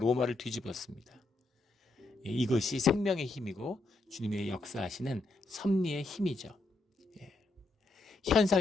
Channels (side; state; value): right; quieter; 3.0 dB